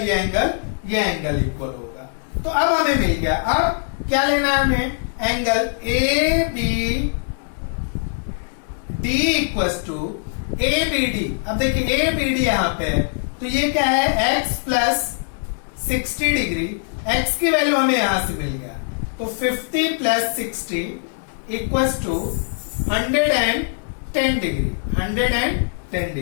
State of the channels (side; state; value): right; silent; digital silence